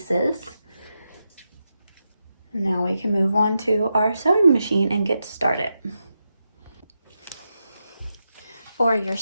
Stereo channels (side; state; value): both; inverted; correlation -0.87